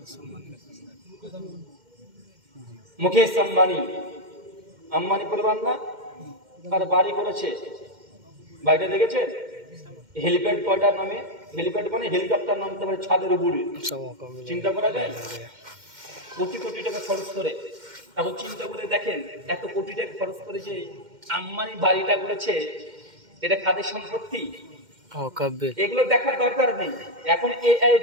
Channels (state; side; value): late; left; 2.1 ms